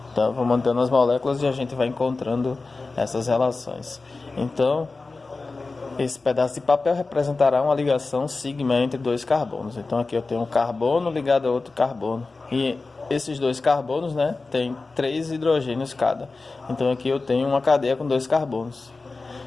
Então eu vou mantendo as moléculas e a gente vai encontrando essas relações. Então esse pedaço de papel representará uma ligação sigma entre dois carbonos. Então aqui eu tenho um carbono ligado a outro carbono e esses dois carbonos, tem 3 hidrogênios cada. Então aqui eu tenho uma cadeia com 2 carbonos.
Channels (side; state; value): right; quieter; 3.7 dB